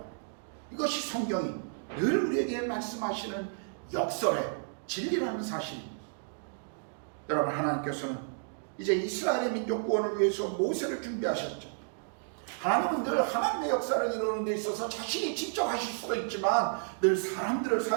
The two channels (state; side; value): silent; left; digital silence